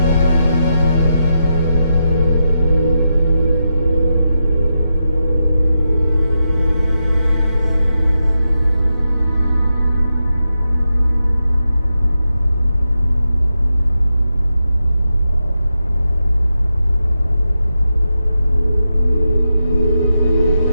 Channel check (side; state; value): both; inverted; correlation -0.87